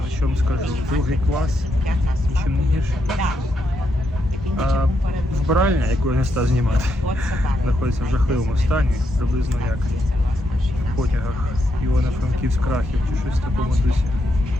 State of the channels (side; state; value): both; normal; correlation 0.80